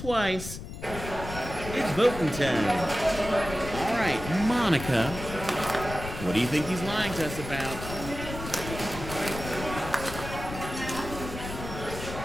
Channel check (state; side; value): noise; left; rumble, 9 dB below the sound